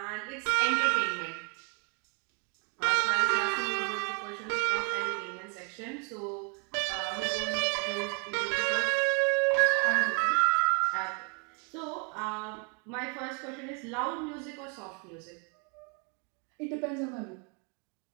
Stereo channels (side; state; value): left; quieter; 36.8 dB